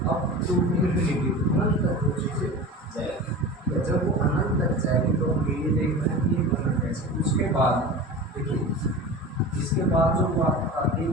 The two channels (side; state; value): both; normal; correlation 0.32